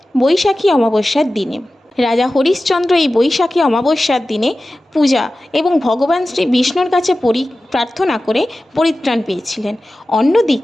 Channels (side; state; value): both; normal; correlation 0.95